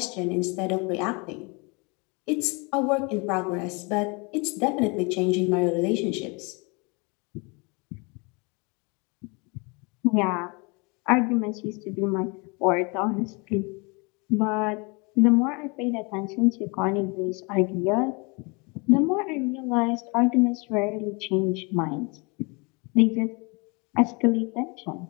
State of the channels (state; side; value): quieter; right; 30.0 dB